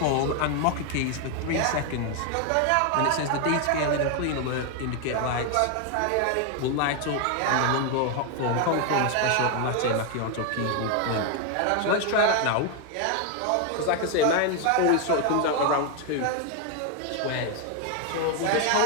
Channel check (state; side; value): different; both; correlation 0.01